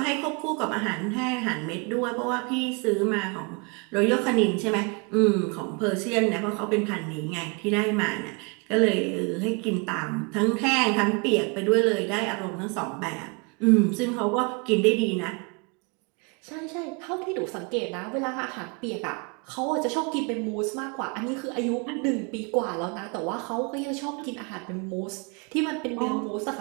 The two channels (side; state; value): left; quieter; 32.2 dB